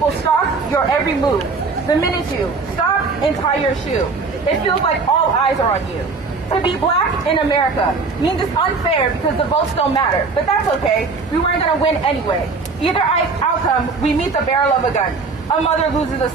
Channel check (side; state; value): left; quieter; 4.3 dB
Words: stalk your every move. The minute you stop and tie your shoe, it feels like all eyes are on you. To be black in America means it's unfair because the votes don't matter, but that's okay. We weren't going to win anyway. Either outcome, we meet the barrel of a gun. A mother loses a